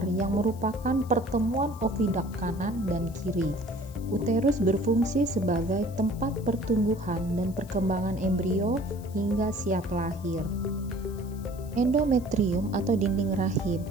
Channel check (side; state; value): left; noise; hiss, 23 dB below the sound